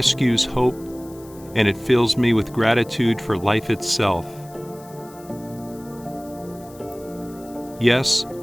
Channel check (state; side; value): noise; left; hiss, 23 dB below the sound